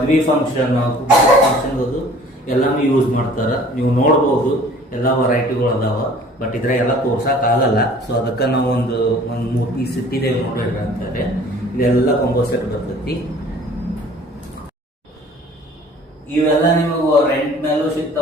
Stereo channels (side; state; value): both; normal; correlation 0.50